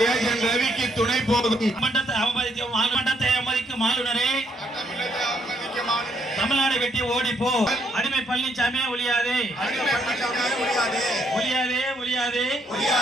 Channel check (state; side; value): normal; both; correlation 0.72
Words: ரவிக்கு துணை போகும் மண்டத்தை அவமதிக்கும் ஆளுநரே, தமிழ்நாடு வெட்டி ஓடிப்போ. அடிமை பழனிசாமி ஒழியாதே, ஒழியாதே, ஒழியாதே.